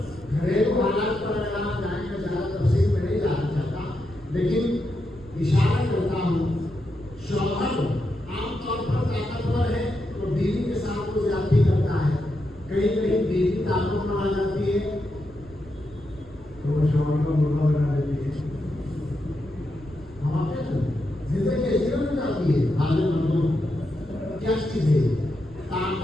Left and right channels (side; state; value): right; noise; rumble, 20 dB below the sound